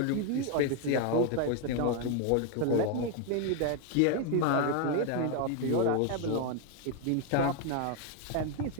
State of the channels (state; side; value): different; both; correlation 0.01